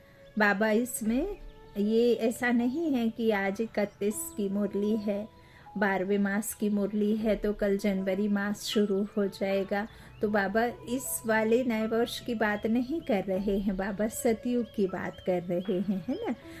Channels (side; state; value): both; identical; correlation 1.00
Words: बाबा इसमें ये ऐसा नहीं है कि आज 31 की मुरली है, 12वें मास की मुरली है तो कल जनवरी मास शुरू हो जाएगा। तो बाबा इस वाले नए वर्ष की बात नहीं कर रहे हैं, बाबा सतयुग की बात कर रहे हैं, है ना।